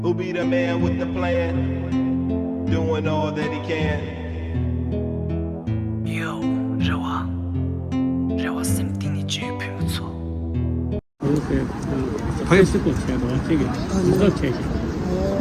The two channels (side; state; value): both; identical; correlation 1.00